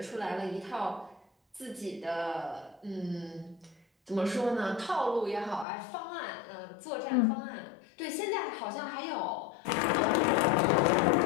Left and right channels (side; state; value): right; drops out; at 5.7 s